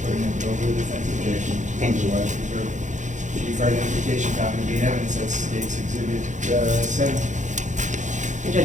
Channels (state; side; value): late; left; 0.35 ms